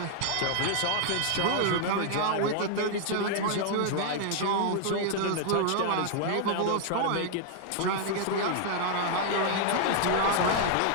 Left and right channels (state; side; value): different; both; correlation 0.00